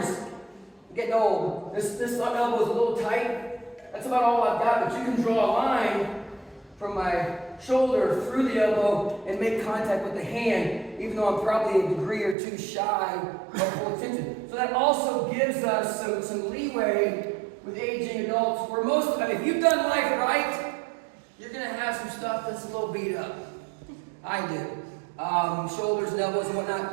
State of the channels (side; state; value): left; drops out; at 12.4 s